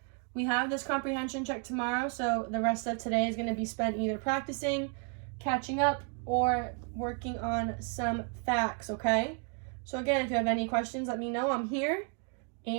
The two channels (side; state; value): left; quieter; 37.5 dB